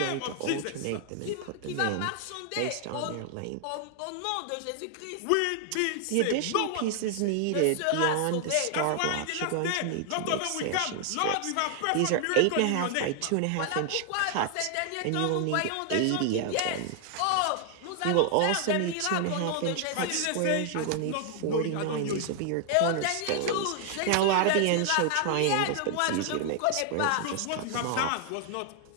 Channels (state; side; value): different; both; correlation 0.00